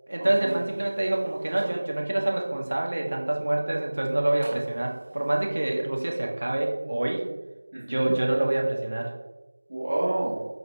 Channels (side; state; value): both; inverted; correlation -1.00